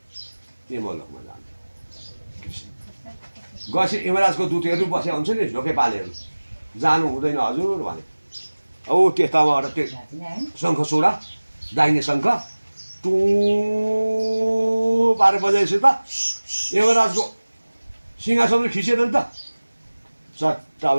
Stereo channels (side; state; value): both; inverted; correlation -1.00